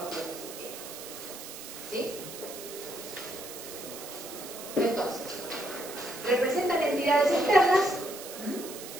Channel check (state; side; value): noise; right; hiss, 11 dB below the sound